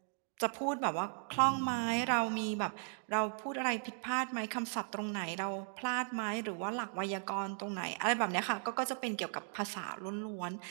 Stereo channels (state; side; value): silent; left; 53 dB below the other